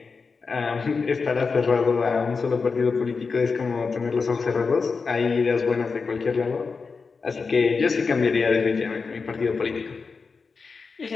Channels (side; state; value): right; quieter; 4.8 dB